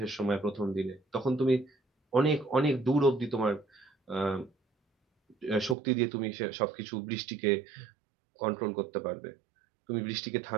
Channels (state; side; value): drops out; left; at 5.8 s